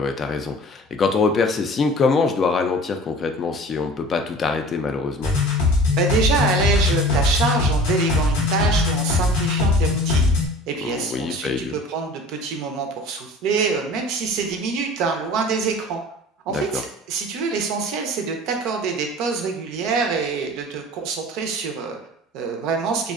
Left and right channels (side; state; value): both; normal; correlation 0.42